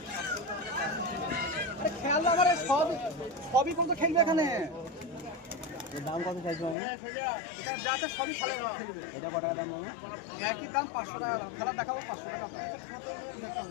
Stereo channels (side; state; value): right; drops out; at 6.8 s